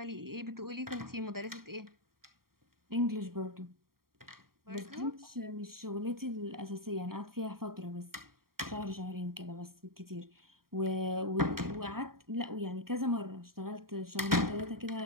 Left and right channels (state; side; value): late; left; 0.93 ms